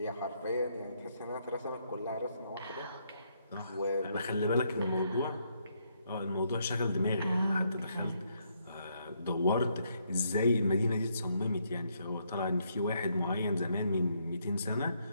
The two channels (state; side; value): inverted; both; correlation -0.74